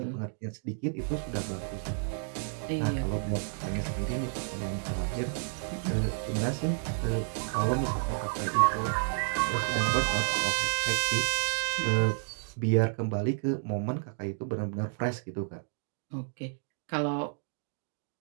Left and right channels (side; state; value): left; silent; 57 dB below the other